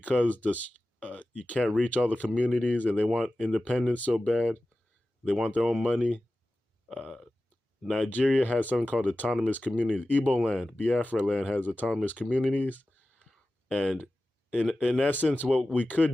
you can't reach all the communities and they want independence so bad, they want their own money. Nigeria has something called autonomous communities. Igbo land, Biafra land has autonomous communities. And in essence, what we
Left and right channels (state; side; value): normal; both; correlation 0.95